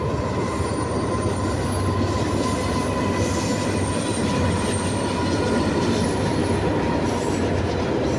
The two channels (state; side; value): identical; both; correlation 1.00